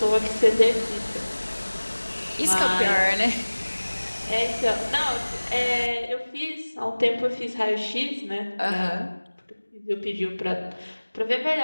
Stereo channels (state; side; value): inverted; both; correlation -1.00